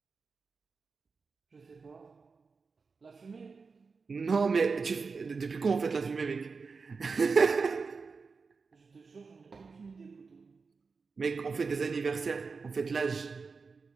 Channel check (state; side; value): quieter; left; 4.7 dB